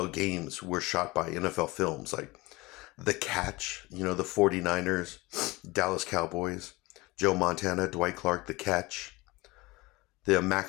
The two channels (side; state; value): right; quieter; 22.2 dB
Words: games were shot by NFL films, like The Catch, the 49ers, Dallas Cowboys, Joe Montana, Dwight Clark, The Catch, The